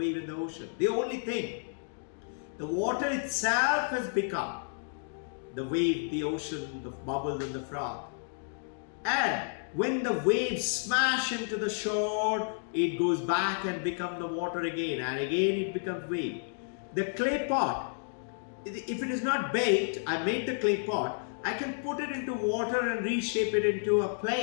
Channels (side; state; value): right; silent; digital silence